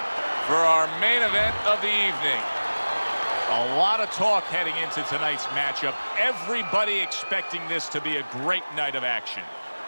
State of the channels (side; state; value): both; inverted; correlation -1.00